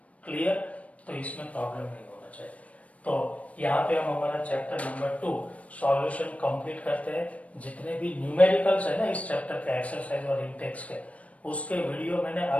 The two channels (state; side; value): late; right; 0.066 ms